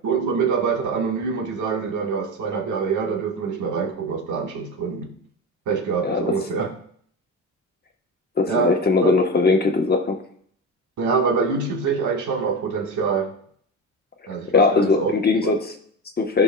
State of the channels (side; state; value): both; normal; correlation 0.22